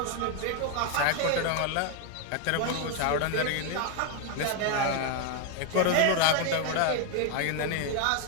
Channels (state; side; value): different; both; correlation 0.01